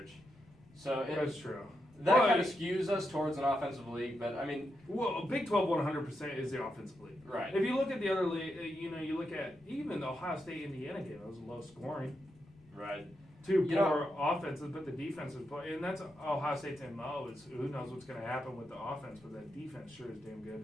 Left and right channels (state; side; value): noise; left; rumble, 27 dB below the sound